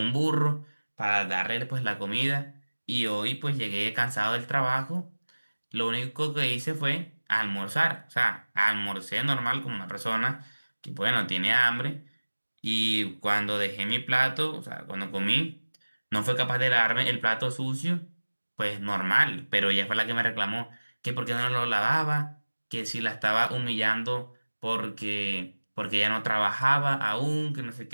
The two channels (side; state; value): both; inverted; correlation -1.00